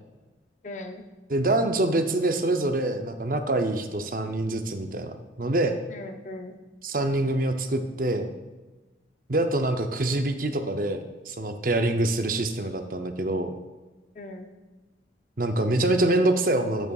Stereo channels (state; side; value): normal; both; correlation 0.46